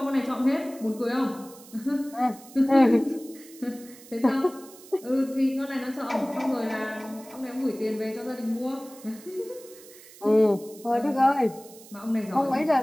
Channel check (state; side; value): noise; right; hiss, 20 dB below the sound